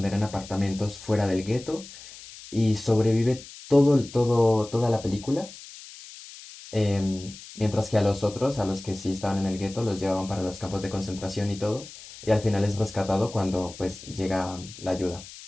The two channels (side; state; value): left; noise; hiss, 16 dB below the sound